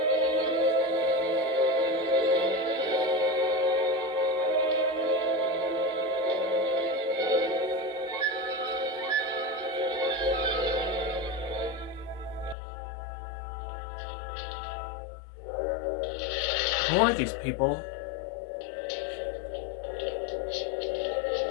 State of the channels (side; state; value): right; drops out; at 12.6 s